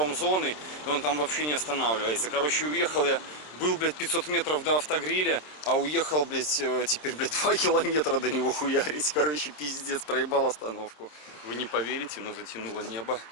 и он там вообще не останавливается. Короче, уехал я, был, блядь, 500 метров до автогриля, а уехал, блядь, теперь, блядь, 2 километра до него хуярить. Короче, пиздец, проебал остановку. Вы не поверите, но затянуло небо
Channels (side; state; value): right; late; 27 ms